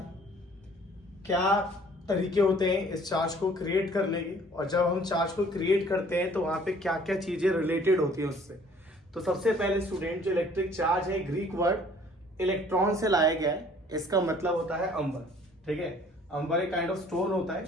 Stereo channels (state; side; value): normal; both; correlation 0.55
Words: क्या तरीके होते हैं इस चार्ज को क्रिएट करने के, और जब हम चार्ज को क्रिएट करते हैं तो वहां पे क्या क्या चीजें रिलेटेड होती है उससे। तो सबसे पहले स्टूडेंट, जो इलेक्ट्रिक चार्ज है ग्रीक वर्ड इलेक्ट्रॉन से लाया गया है। इसका मतलब होता है अंबर। ठीक है, अंबर एक काइंड ऑफ स्टोन होता है